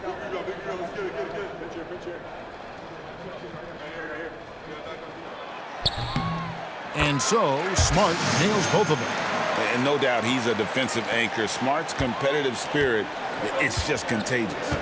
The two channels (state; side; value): identical; both; correlation 1.00